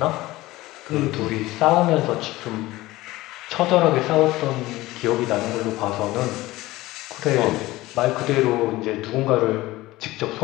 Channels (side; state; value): right; quieter; 18.3 dB